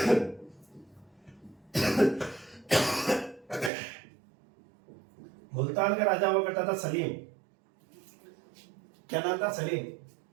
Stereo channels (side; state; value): left; drops out; at 3.7 s